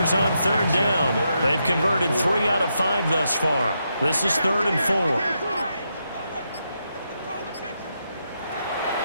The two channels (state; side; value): inverted; both; correlation -0.82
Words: on 3rd down. They've converted 3 out of 5 thus far. This is 3rd and 4.